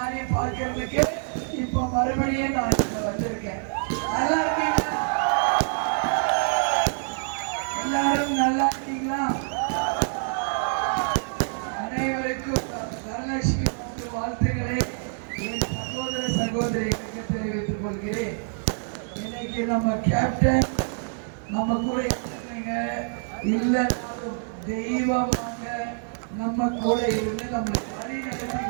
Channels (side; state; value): left; silent; digital silence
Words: பார்க்கறதுக்கு இப்ப மறுபடியும் நான் இங்க வந்திருக்கேன். நல்லா இருக்கீங்களா? எல்லாரும் நல்லா இருக்கீங்களா? அனைவருக்கும் வரலட்சுமி வாழ்த்துக்களை என் சகோதர சகோதரிகளுக்கு தெரிவித்துக் கொள்கிறேன். இன்னைக்கு நம்ம கேப்டன் நம்ம கூட இல்லைனாலும் தெய்வமாக நம்ம கூட இருந்து நம்மளை வழி நடத்தி